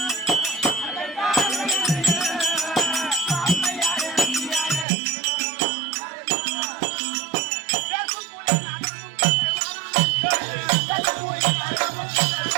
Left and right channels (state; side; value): drops out; left; at 4.9 s